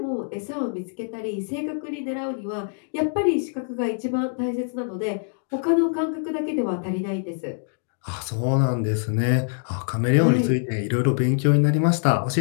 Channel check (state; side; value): silent; right; digital silence